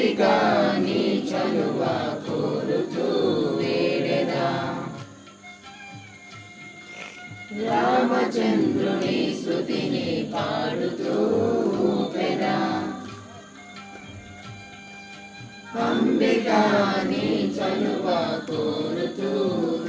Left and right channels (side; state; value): both; identical; correlation 1.00